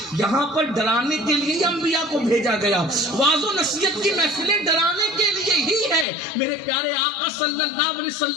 یہاں پر ڈرانے کے لیے انبیاء کو بھیجا گیا. واعظ و نصیحت کی محفلیں ڈرانے کے لیے ہی ہے. میرے پیارے آقا صلی اللہ علیہ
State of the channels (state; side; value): drops out; right; at 6.1 s